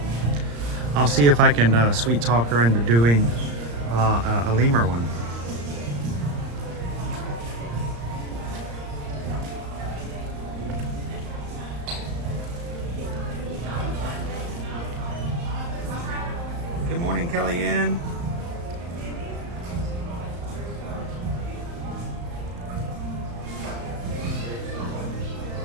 I'll see if I can sweet talk her into doing a lemur one. Good morning, Kellyanne.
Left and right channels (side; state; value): left; late; 35 ms